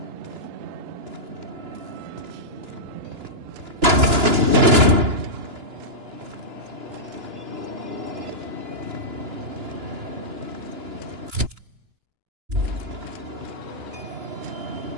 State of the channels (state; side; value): late; left; 2.9 ms